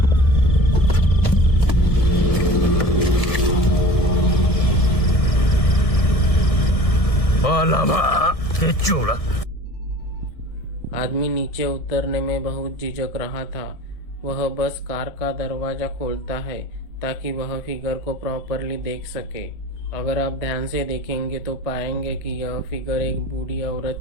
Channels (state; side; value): late; right; 1.6 ms